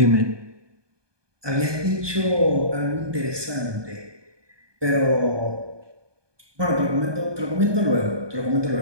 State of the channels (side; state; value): left; late; 1.2 ms